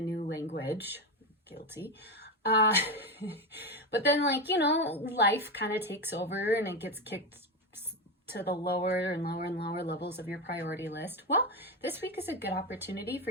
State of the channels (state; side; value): normal; both; correlation 0.15